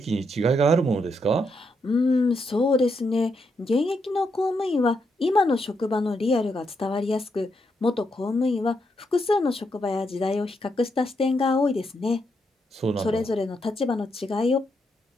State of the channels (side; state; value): both; normal; correlation 0.80